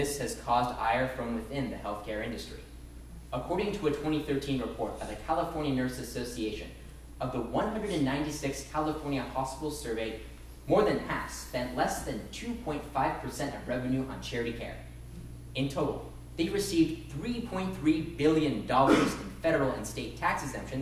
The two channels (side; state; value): both; identical; correlation 1.00